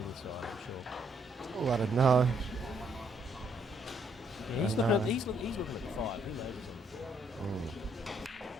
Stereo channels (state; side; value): normal; both; correlation 0.70